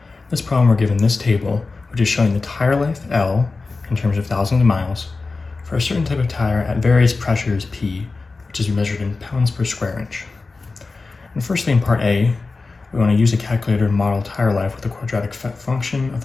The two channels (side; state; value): right; quieter; 3.9 dB